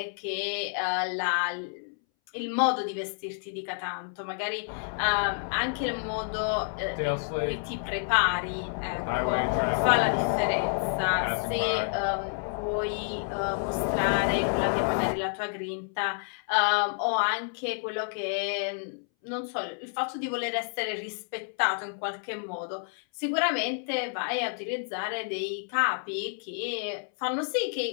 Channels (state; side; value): silent; right; 58 dB below the other